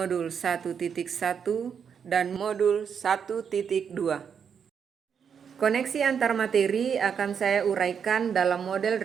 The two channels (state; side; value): quieter; left; 7.2 dB